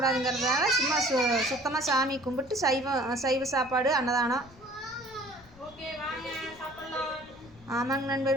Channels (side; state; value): left; noise; rumble, 23 dB below the sound